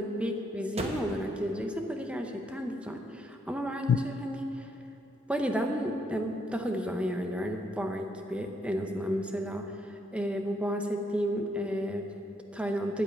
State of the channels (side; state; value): both; normal; correlation 0.74